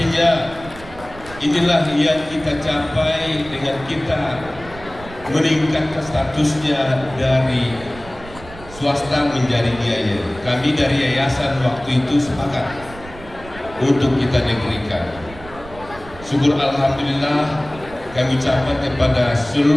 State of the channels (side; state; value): right; noise; rumble, 17 dB below the sound